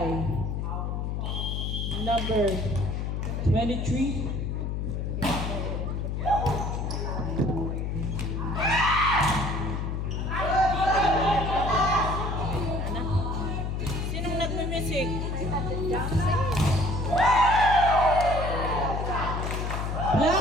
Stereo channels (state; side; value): noise; left; hum, 2 dB below the sound